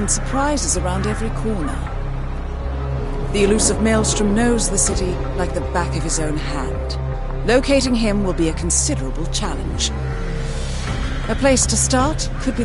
surprises around every corner. The elusive Maelstrom knows the city like the back of his own hand. Locating him will be a considerable challenge. A place to start could be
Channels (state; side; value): identical; both; correlation 1.00